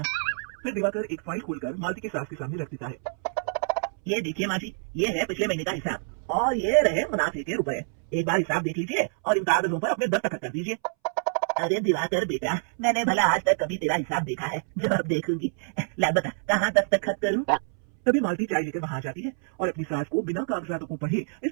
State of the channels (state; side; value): silent; left; 60 dB below the other